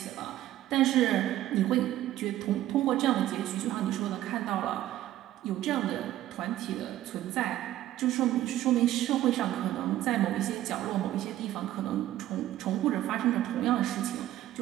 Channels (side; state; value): left; quieter; 13.8 dB